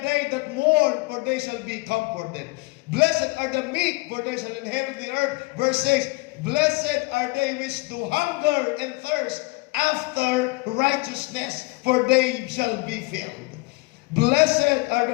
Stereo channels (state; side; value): quieter; right; 24.9 dB